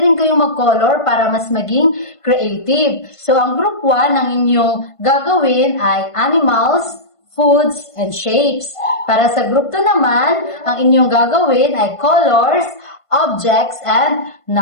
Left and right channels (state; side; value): late; right; 1.5 ms